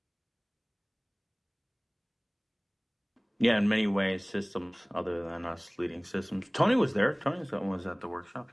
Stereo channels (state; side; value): identical; both; correlation 1.00